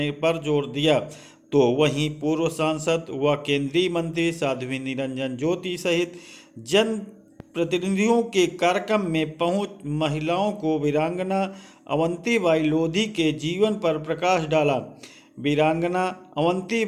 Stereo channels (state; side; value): identical; both; correlation 1.00